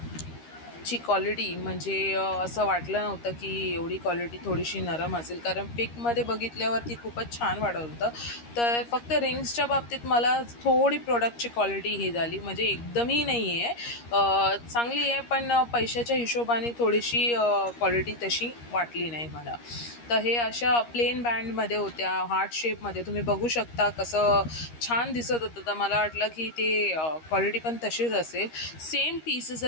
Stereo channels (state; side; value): late; right; 13 ms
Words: ची क्वालिटी म्हणजे असं वाटलं नव्हतं की एवढी क्वालिटी थोडीशी नरम असेल, कारण पिकमध्ये बघितल्यावरती खूपच छान वाटत होतं। तर फक्त रिंग्सच्या बाबतीत मला थोडी प्रोडक्टची क्वालिटी ही झाली, म्हणजे एकदमही नाही आहे, चांगली आहे, पण पैशाच्या हिशोबाने थोडीशी क्वालिटी तशी वाटली नाही मला। तर हे अशा प्लेन बँडमध्ये होत्या, हार्ट शेपमध्ये, तुम्ही बघू शकता कसं छान दिसत होतं। तर मला वाटलं की ते क्वालिटी पण तशीच असेल। सेम पीसेस